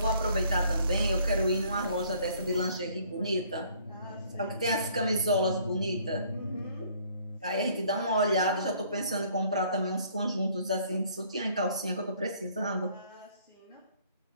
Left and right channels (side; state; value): both; inverted; correlation -0.60